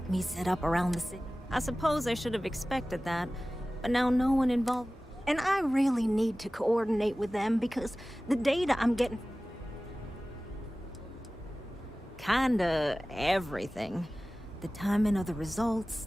me set up around the city? I suppose I should have expected that, but now no one involved. And I really need to coordinate with them because the data I'm getting... Kinda everything. The timing of the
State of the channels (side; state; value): both; normal; correlation 0.97